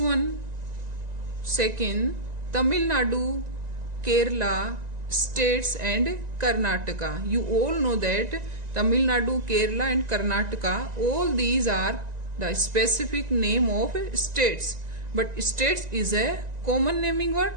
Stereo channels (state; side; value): late; left; 1.9 ms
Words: second, Tamil Nadu, Kerala, states and Karnataka. You all know that Tamil Nadu, Kerala and Karnataka, all these are the specific name of states. But states is a common naming word,